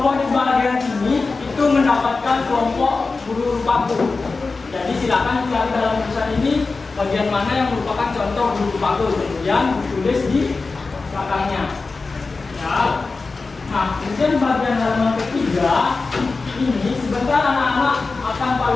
di bagian sini itu mendapatkan kelompok guru paku. Jadi silakan cari dalam tulisan ini bagian mana yang merupakan contoh guru paku, kemudian ditulis di belakangnya. Ya. Nah, kemudian bagian halaman ketiga ini sebentar anak-anak akan Pak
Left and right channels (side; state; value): right; quieter; 4.0 dB